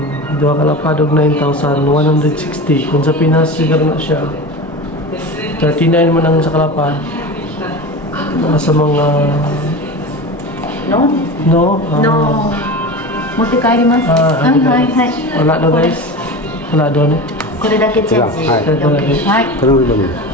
Dua kalapad og 9,160. Kung sa Pinas siguro na siya 39 man ang sa kalapad. Nasa mga No? no? 持って帰ります。はいはいはい。 Wala daw guys. Wala daw ni. これだけチェンジ。はい はい。 Tanong lang yun.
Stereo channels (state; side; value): normal; both; correlation 0.29